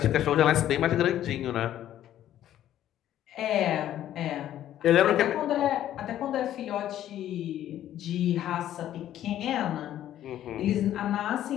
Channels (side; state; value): right; quieter; 12.0 dB